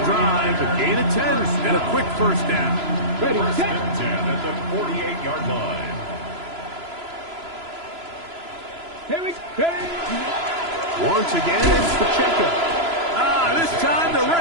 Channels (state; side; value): late; left; 3.0 ms